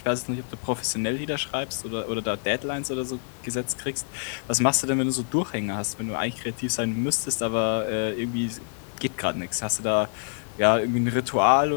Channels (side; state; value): right; silent; digital silence